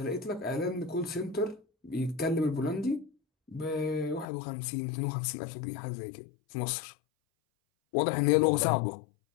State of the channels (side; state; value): right; drops out; at 4.2 s